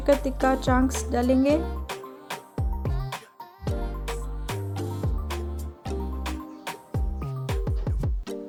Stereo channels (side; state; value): both; identical; correlation 1.00